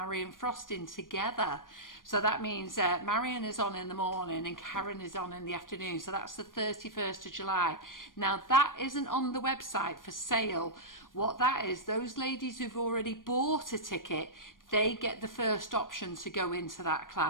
Frost in together. So that means Marion is on in the morning and Karen is on in the afternoon. So that's the 31st of July. Now, that isn't on the website for sale. What that is, those ladies who've already bought a ticket, they get the first option to go into that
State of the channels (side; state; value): right; late; 0.90 ms